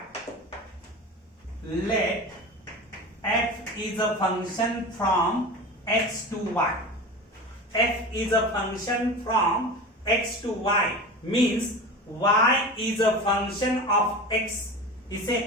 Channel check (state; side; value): normal; both; correlation 0.31